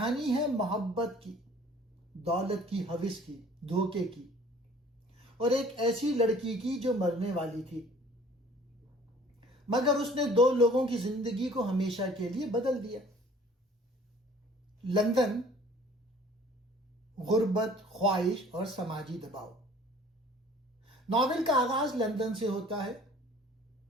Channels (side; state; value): both; normal; correlation 0.51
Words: ہے محبت کی، دولت کی ہوس کی، دھوکے کی، اور ایک ایسی لڑکی کی جو مرنے والی تھی، مگر اس نے دو لوگوں کی زندگی کو ہمیشہ کے لیے بدل دیا۔ لندن، غربت، خواہش اور سماجی دباؤ۔ ناول کا آغاز لندن سے ہوتا ہے،